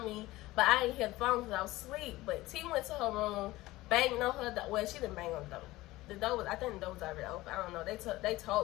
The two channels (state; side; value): quieter; right; 18.3 dB